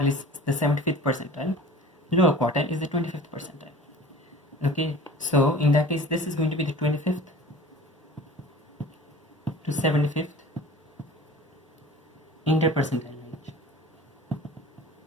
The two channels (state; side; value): normal; both; correlation 0.41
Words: is the 75th percentile, lower quartile is the 25th percentile. Okay, so in that case this is going to be the 25th to 75th interpercentile range.